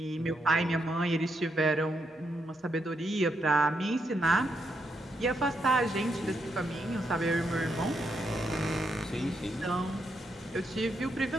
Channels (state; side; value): normal; both; correlation 0.80